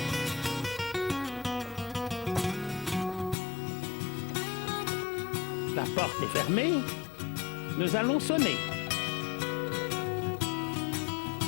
La porte est fermée. Nous allons sonner.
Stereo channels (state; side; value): drops out; right; at 3.4 s